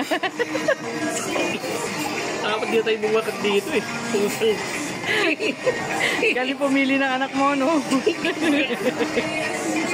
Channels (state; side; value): identical; both; correlation 1.00